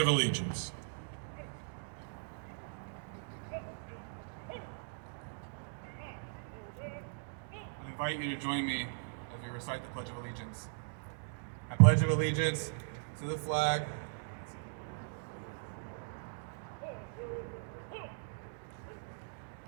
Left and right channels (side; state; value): left; silent; digital silence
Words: Allegiance. I invite you to join me as we recite the Pledge of Allegiance. I pledge of allegiance to the flag